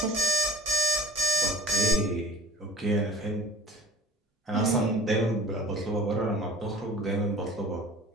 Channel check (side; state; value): both; normal; correlation 0.43